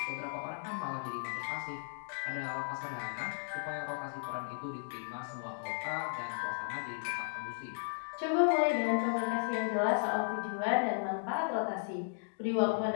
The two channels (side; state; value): right; silent; digital silence